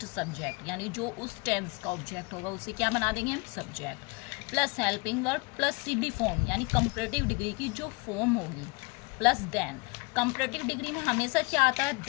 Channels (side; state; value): right; quieter; 28.5 dB